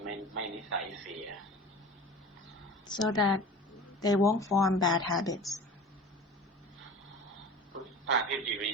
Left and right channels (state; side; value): normal; both; correlation 0.37